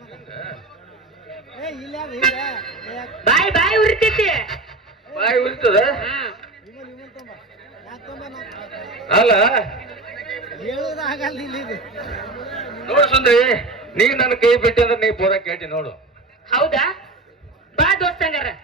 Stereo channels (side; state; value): left; quieter; 3.2 dB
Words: ಬಾಯ್ ಬಾಯ್ ಉರಿತೈತಿ. ಬಾಯಿ ಉರಿತದ ಅಲ್ಲ? ನೋಡು ಸುಂದ್ರಿ, ನೀ ನನ್ನ ಕೈ ಬಿಟ್ಟಿ ಅಂದ್ರೆ ನೀ ಪೂರ ಕೇಟಿ ನೋಡು. ಹೌದಾ? ಬಾ ದೋಸ್ತಂಗಾರ.